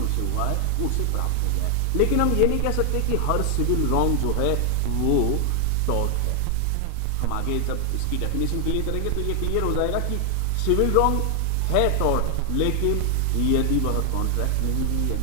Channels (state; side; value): different; both; correlation 0.00